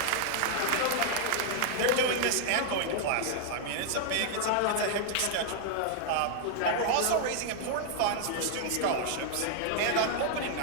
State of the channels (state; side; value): different; both; correlation -0.01